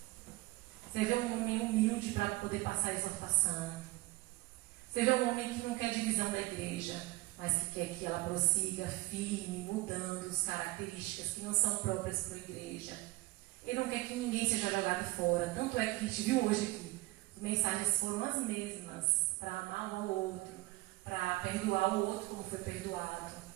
Você vê um homem humilde para poder passar a exortação. Você vê um homem que não quer divisão da igreja, mas que quer que ela prossiga firme, mudando as características que não são próprias para a igreja. Ele não quer que ninguém seja jogado fora. Tanto é que a gente viu hoje aqui, as mensagens foram as mesmas, para amar um ao outro, para perdoar o outro como foi perdoado.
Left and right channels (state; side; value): quieter; left; 20.8 dB